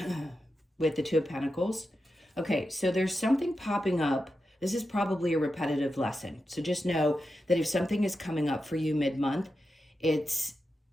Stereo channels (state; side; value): normal; both; correlation 0.89